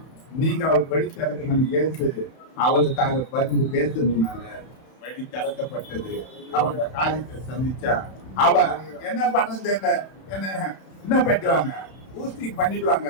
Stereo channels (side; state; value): right; late; 31 ms